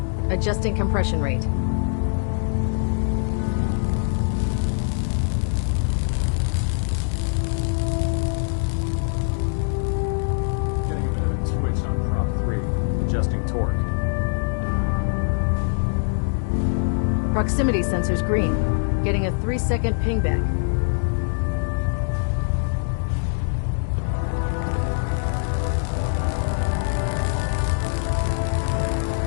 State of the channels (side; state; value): right; silent; digital silence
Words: Adjusting compression rate. Getting a bit of a twitch on prop 3. Adjusting torque. Proximity sensors green. Getting a 3-second pingback.